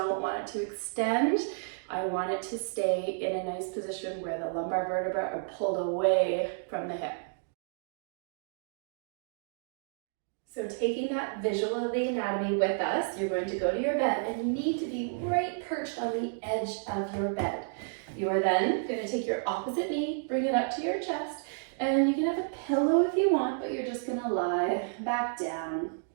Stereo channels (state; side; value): silent; left; digital silence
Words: want it to extend. I want it to stay in a nice position where the lumbar vertebrae are pulled away from the hip. So taking that visual of the anatomy with us, you're going to go to your bed and you need to be right perched on the edge of your bed. You are then going to take your opposite knee, bring it up to your chest, and you can have a pillow if you want, but you're just going to lie back down